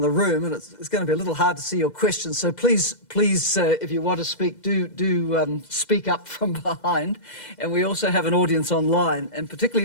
the room, and it's going to be a little hard to see your questions. So please, if you want to speak, do speak up from behind. And we also have an audience online, and particularly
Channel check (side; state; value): right; late; 2.0 ms